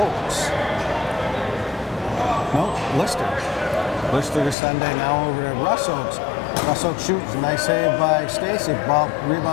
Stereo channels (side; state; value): right; drops out; at 4.5 s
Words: Nope, Lister. Lister to Sunday, now over to Russ Oakes. Russ Oakes shoots, nice save by Stacy. Ball